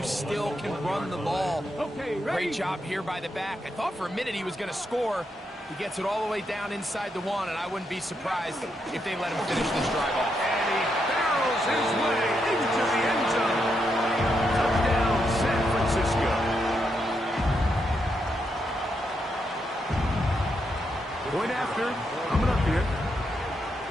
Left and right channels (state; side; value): normal; both; correlation 0.81